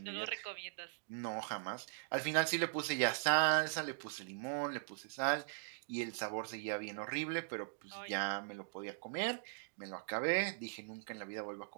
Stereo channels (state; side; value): silent; left; digital silence